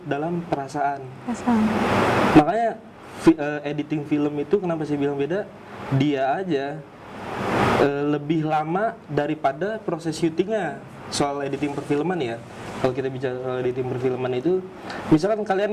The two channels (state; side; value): identical; both; correlation 1.00